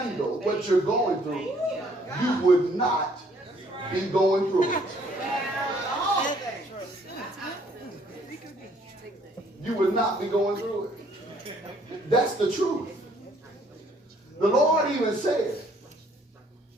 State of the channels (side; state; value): both; normal; correlation 0.63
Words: what you're going through, you would not be going through it. You would not be going through it. That's the truth. The Lord even said,